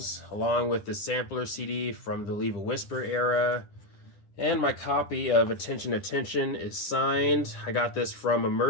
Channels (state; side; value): late; right; 10 ms